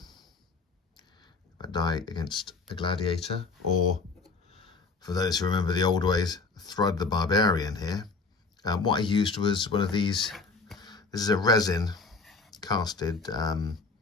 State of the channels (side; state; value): right; quieter; 4.1 dB